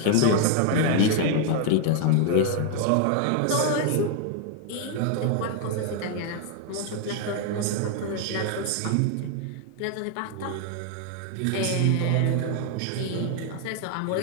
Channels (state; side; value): different; both; correlation 0.00